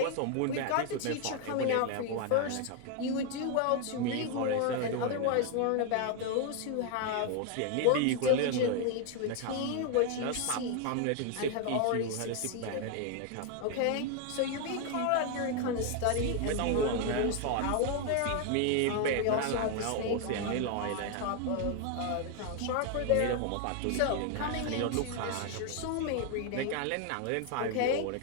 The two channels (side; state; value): both; different; correlation 0.01